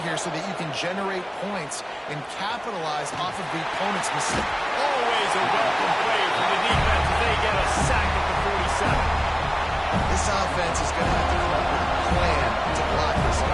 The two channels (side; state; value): both; identical; correlation 1.00